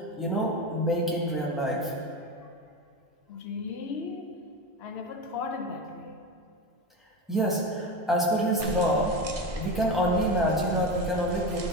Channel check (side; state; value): both; normal; correlation 0.22